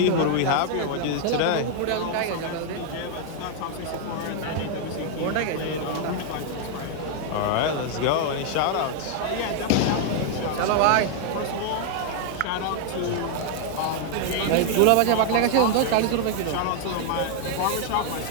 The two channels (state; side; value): different; both; correlation 0.00